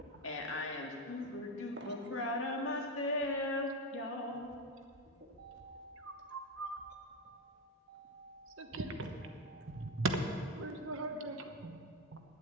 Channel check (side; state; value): both; normal; correlation 0.14